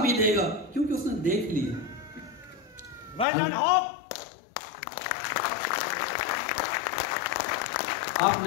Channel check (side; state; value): right; drops out; at 3.2 s